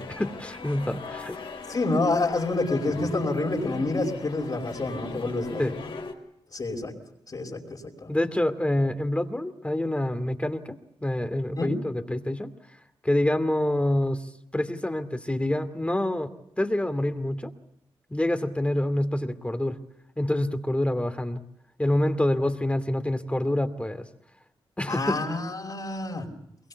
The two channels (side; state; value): both; normal; correlation 0.92